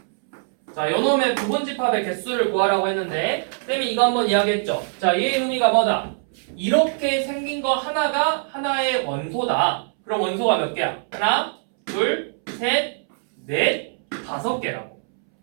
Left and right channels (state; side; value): silent; left; 64 dB below the other